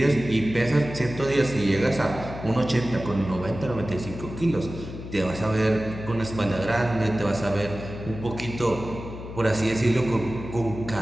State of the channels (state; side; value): noise; left; hum, 10 dB below the sound